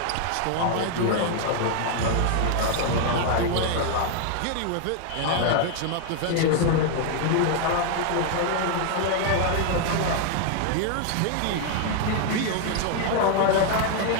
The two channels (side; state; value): both; different; correlation 0.00